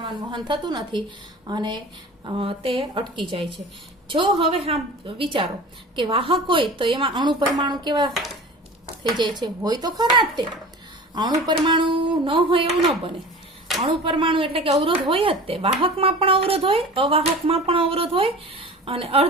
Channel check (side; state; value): both; normal; correlation 0.37